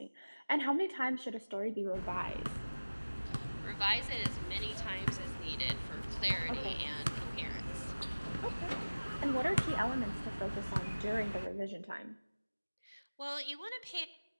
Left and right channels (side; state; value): both; inverted; correlation -1.00